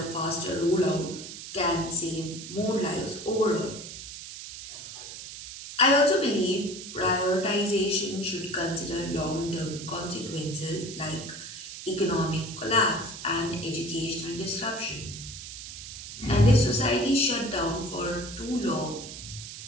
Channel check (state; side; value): noise; right; hiss, 11 dB below the sound